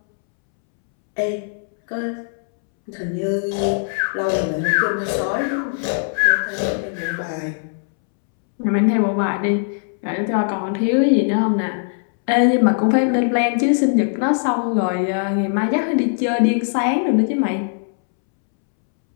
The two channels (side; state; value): right; silent; 66 dB below the other